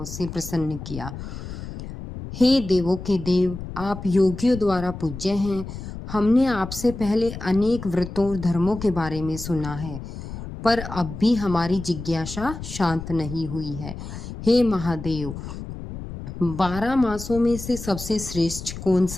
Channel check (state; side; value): noise; left; rumble, 10 dB below the sound